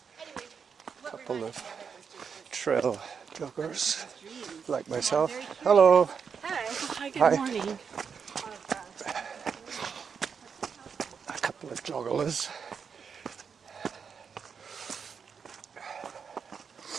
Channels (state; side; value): quieter; left; 6.4 dB